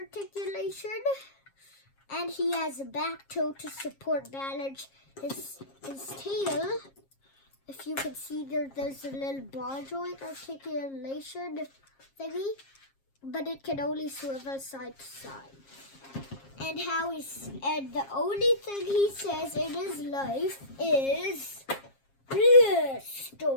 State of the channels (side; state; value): right; late; 7.4 ms